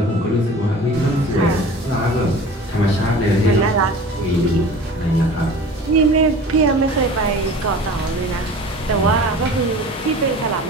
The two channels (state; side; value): normal; both; correlation 0.40